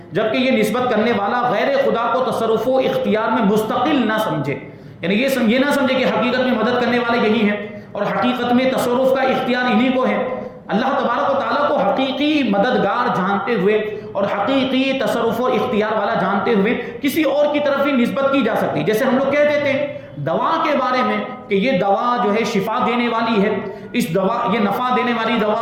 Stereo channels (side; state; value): both; identical; correlation 1.00